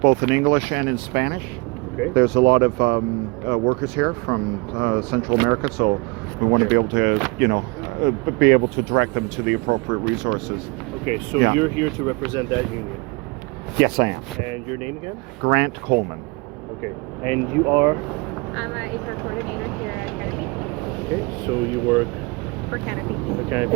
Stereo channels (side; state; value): left; quieter; 26.8 dB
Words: in English and in Spanish. Okay. There's a lot of workers here from Central America, so we want to be able to, be able to direct them to the appropriate resources. Okay, so you're here to represent that union. Yes, I am. And your name again? Grant Coleman. Okay. And you are? I'm an HR coordinator here at Canopy. Okay, so you work For Canopy. for